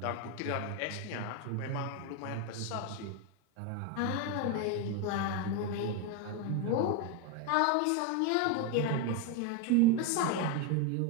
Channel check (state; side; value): different; both; correlation 0.02